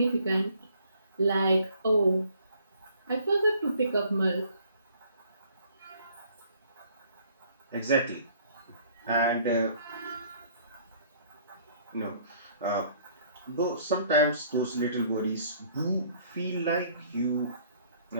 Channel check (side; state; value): both; inverted; correlation -0.59